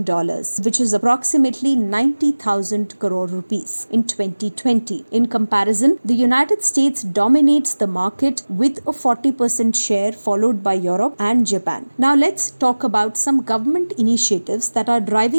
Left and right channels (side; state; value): both; inverted; correlation -1.00